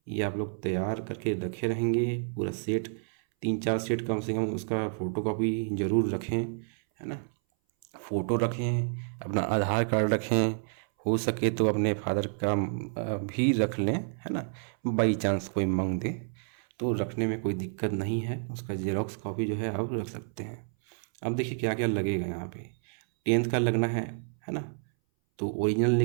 ये आप लोग तैयार करके रखे रहेंगे पूरा सेट, 3-4 सेट कम से कम उसका फ़ोटोकॉपी ज़रूर रखें, है ना। फ़ोटो रखें, अपना आधार कार्ड रखें, हो सके तो अपने फादर का भी रख लें, है ना, बाई चांस कोई मांग दे तो रखने में कोई दिक्कत नहीं है, उसका जेरोक्स कॉपी जो है आप रख सकते हैं। अब देखिए क्या क्या लगेगा यहाँ पे, 10th का लगना है ना, तो ओरिजिनल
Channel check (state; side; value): silent; left; 58 dB below the other